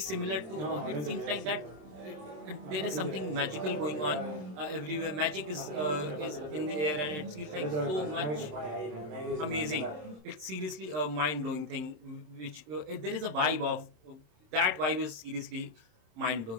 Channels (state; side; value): late; left; 27 ms